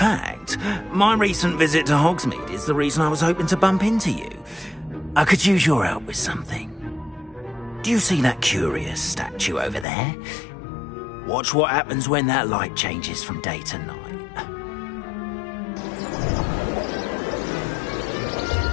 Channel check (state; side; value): drops out; right; at 9.9 s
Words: my recent visit to Hogsmeade is the reason I was hoping to bump into you. I could use your help with something. Do you see that curious statue over there? Watch what happens when that light changes from day to night.